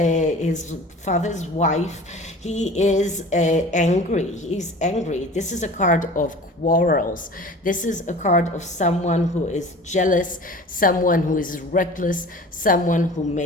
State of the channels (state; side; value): normal; both; correlation 0.41